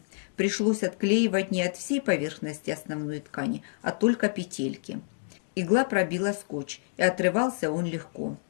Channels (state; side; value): silent; right; digital silence